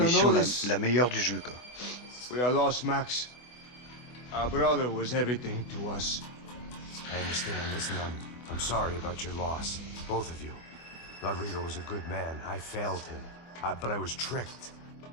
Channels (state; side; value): late; right; 24 ms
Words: mission know this. la meilleure du jeu, quoi. We are lost, Max. Our brother was everything to us. I understand. Listen, I'm sorry about your loss. Both of you. Rodrigo was a good man. I failed him. But I was tricked.